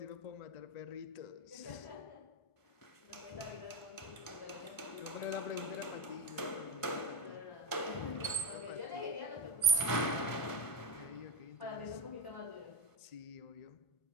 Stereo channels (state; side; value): late; right; 1.5 ms